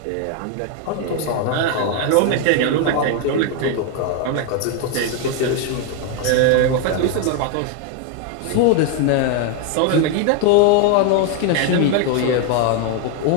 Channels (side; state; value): both; different; correlation 0.01